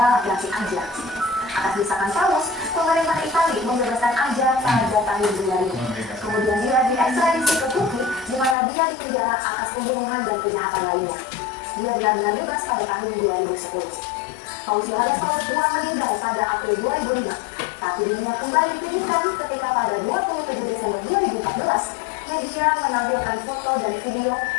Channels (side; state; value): right; drops out; at 8.6 s